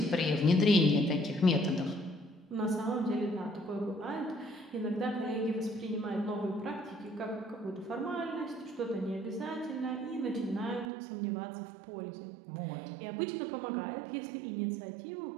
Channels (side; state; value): left; drops out; at 10.9 s